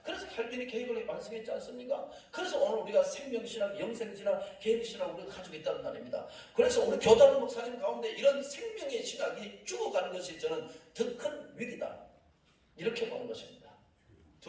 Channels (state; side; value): identical; both; correlation 1.00